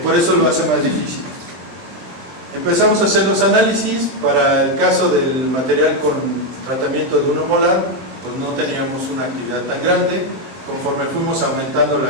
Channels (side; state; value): left; late; 23 ms